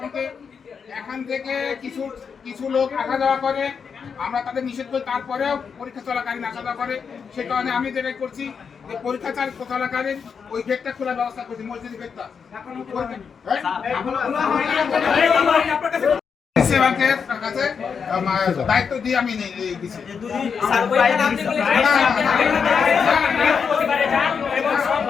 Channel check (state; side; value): quieter; right; 6.2 dB